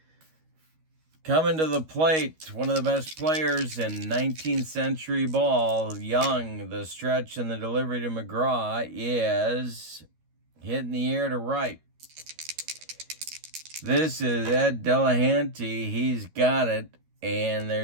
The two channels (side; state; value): left; late; 13 ms